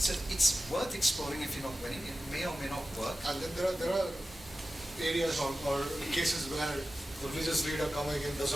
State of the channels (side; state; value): both; normal; correlation 0.94